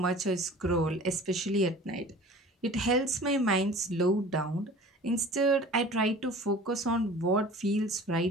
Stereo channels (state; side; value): normal; both; correlation 0.43